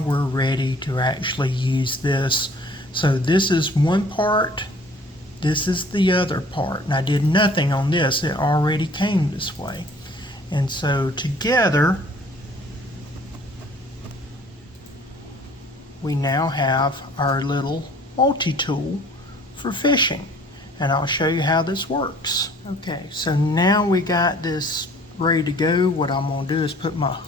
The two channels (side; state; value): both; normal; correlation 0.53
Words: ready to actually use this. So this is one part, this is the other part, and I did nothing on this, it already came this way. And so together we now have our little multi-tool for fishing, and I'll show you how this works. Okay, so now we got this ready to go. What I'm going to do is put my